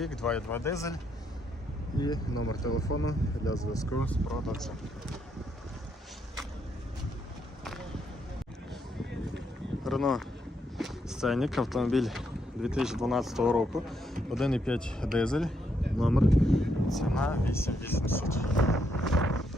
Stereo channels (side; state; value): both; normal; correlation 0.77